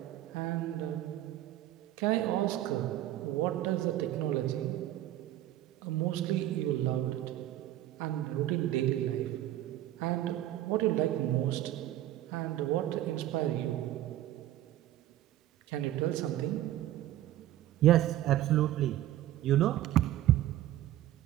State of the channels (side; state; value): left; quieter; 13.7 dB